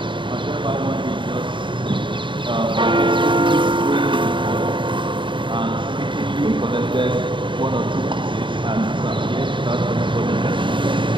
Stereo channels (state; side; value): late; left; 0.24 ms